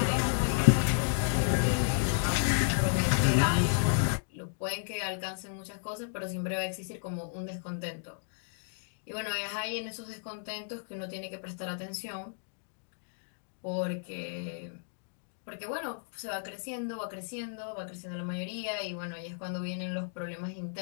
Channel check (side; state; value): right; silent; digital silence